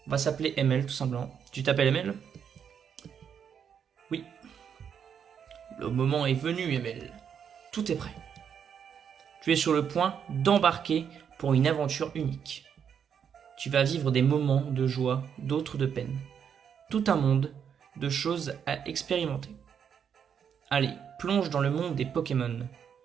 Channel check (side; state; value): left; quieter; 7.8 dB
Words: On va s'appeler ML tout simplement. Tu t'appelles ML? Oui. Le moment est venu, ML. Tout est prêt. Tu es sur le point d'embarquer pour une aventure unique. Tu vas vivre des moments de joie, d'autres de peine. Tout un monde de choses à expérimenter. Allez, plonge dans le monde des Pokémon.